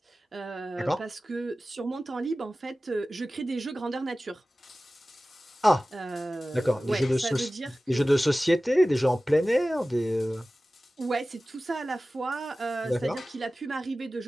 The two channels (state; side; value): normal; both; correlation 0.96